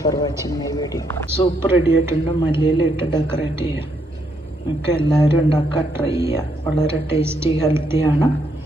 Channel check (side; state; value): both; normal; correlation 0.75